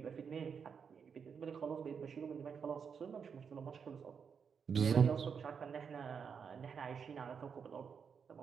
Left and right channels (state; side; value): quieter; left; 6.5 dB